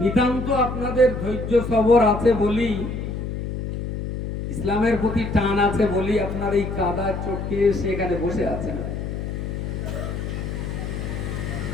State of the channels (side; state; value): left; noise; hum, 5 dB below the sound